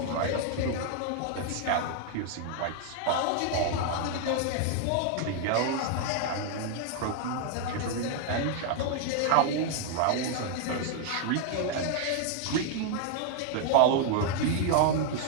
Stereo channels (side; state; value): both; different; correlation 0.00